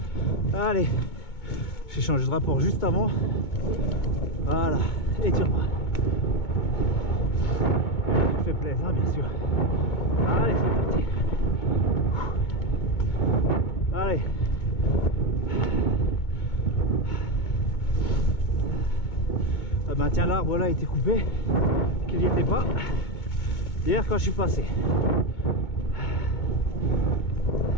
Allez. J'ai changé de rapport juste avant. Voilà. Et tire-moi. Tu fais plaisir, hein, bien sûr. Allez, c'est parti. Allez. Ah ben tiens, l'arbre là a été coupé, qu'il n'y était pas hier quand je suis passé.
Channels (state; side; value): late; right; 2.2 ms